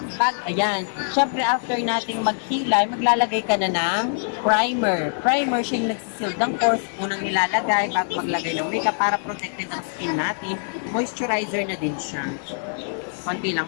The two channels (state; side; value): silent; right; digital silence